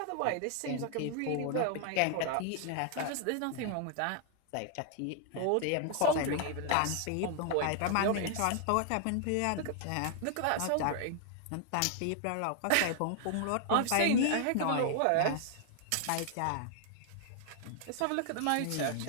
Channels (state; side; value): different; both; correlation 0.00